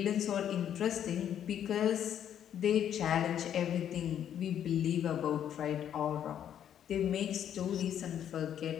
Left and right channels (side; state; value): right; quieter; 9.8 dB